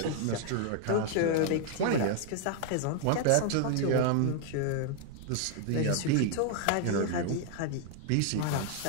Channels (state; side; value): different; both; correlation 0.00